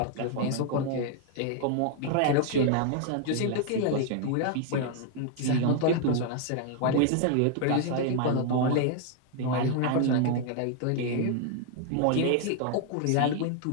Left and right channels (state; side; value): different; both; correlation 0.00